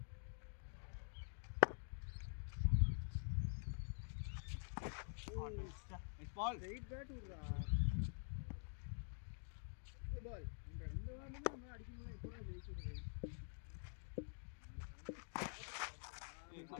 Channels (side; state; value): right; silent; digital silence